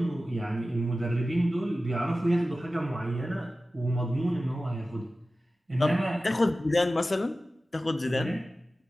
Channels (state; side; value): normal; both; correlation 0.95